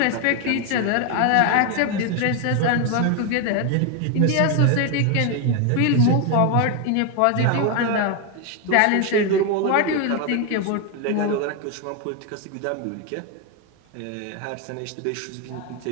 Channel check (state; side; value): different; both; correlation 0.01